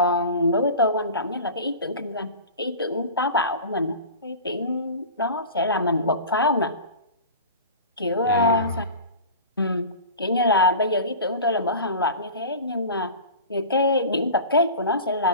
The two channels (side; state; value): both; inverted; correlation -0.34